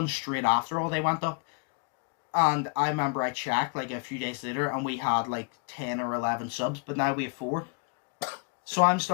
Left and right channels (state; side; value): quieter; right; 36.8 dB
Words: straight after all they went up. And I remember I checked like a few days later and we had like 10 or 11 subs, but now we have 4. So I'm